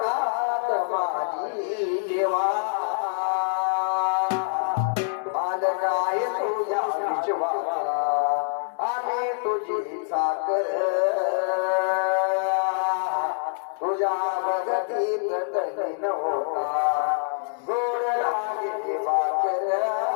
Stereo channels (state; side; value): silent; right; digital silence